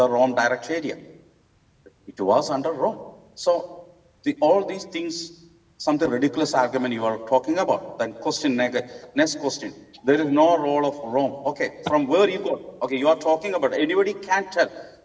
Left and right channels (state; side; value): identical; both; correlation 1.00